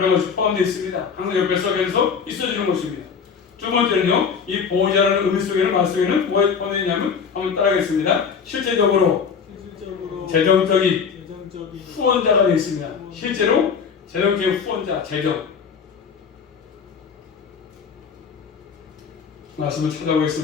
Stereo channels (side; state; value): right; quieter; 6.3 dB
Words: 것이 포함되어 있습니다. 항상 옆에서 계속 있어주는 것입니다. 두 번째는요, 이 보호자라는 의미 속에는 말 속에는 뭐가 포함되어 있냐면 한번 따라하겠습니다. 실제적으로 재정적인 후원자가 되어 있습니다. 실제로 재정적인 후원자, 재정. 말씀을